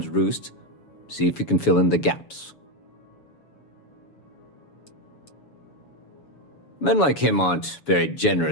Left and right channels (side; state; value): right; late; 7.0 ms